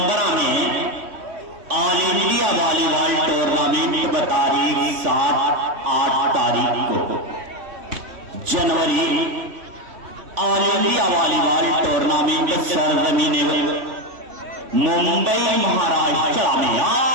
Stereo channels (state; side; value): late; left; 3.1 ms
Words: ऑल इंडिया वॉलीबॉल टूर्नामेंट तारीख 7-8 तारीख को जनवरी ऑल इंडिया वॉलीबॉल टूर्नामेंट सरजमीने मुंबई महाराष्ट्र में।